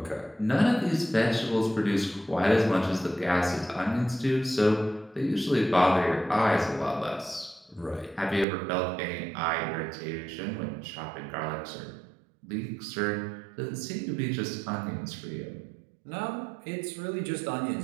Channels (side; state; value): left; drops out; at 8.5 s